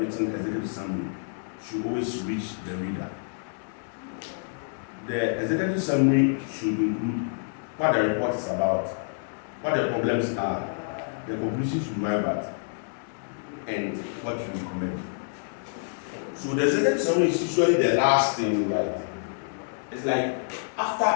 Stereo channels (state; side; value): silent; right; 60 dB below the other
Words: executive summary should always reach the reader. The executive summary should include what the report is about, what the problems are, the conclusions you arrive at, and what you recommend. So the executive summary is usually the last thing you write. It's like